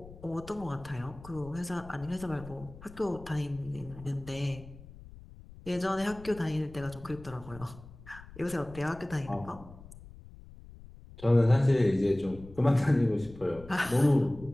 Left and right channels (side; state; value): left; noise; rumble, 18 dB below the sound